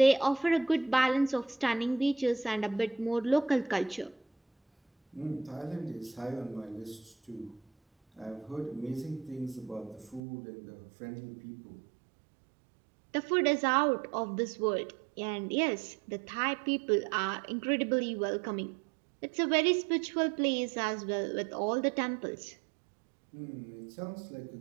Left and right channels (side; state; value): left; drops out; at 10.2 s